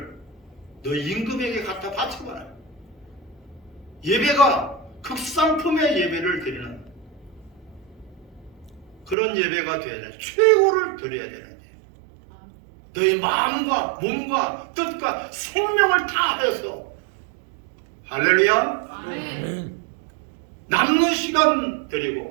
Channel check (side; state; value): left; drops out; at 9.2 s